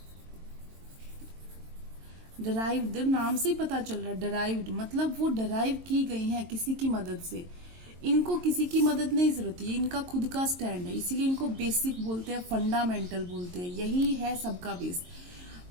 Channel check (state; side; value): late; left; 22 ms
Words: डिराइव्ड नाम से ही पता चल रहा है, डिराइव्ड मतलब वो डिराइव की गई हैं किसी की मदद से। इनको किसी की मदद नहीं जरूरत है, इनका खुद का स्टैंड है, इसीलिए इनको बेसिक बोलते हैं, फंडामेंटल बोलते हैं। यही है सबका बेस।